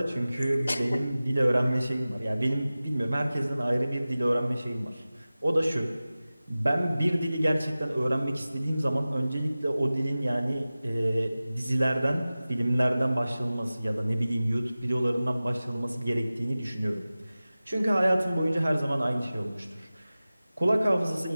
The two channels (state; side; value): inverted; both; correlation -0.97